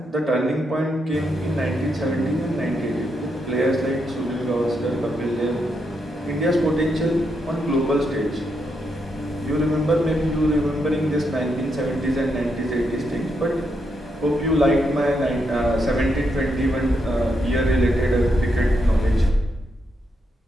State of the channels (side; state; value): both; normal; correlation 0.81